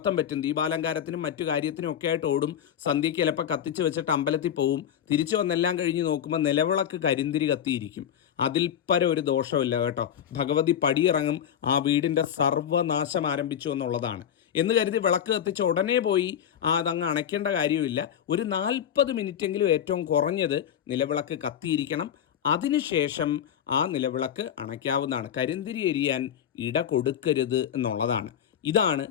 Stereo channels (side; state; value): right; quieter; 9.2 dB